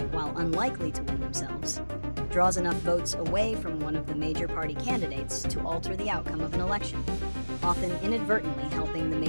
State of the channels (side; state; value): both; inverted; correlation -1.00